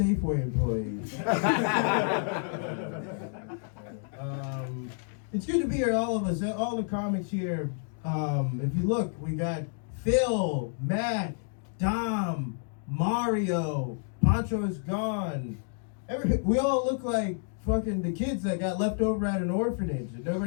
employee. It's good to be here, all of us, all the comics here. If you look, we got Phil, Matt, Dom, Mario, Pancho is gone. We all look like fucking the kids that got left over at an orphanage and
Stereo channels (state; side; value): silent; right; 58 dB below the other